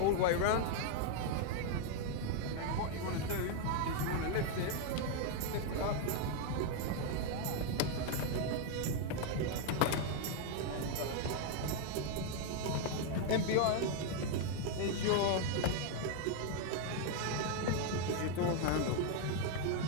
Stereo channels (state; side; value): different; both; correlation 0.00